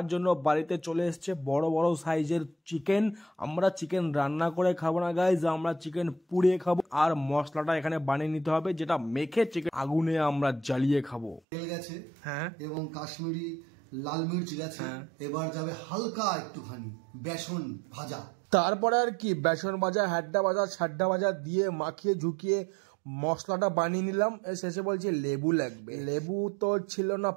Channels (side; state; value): left; drops out; at 11.4 s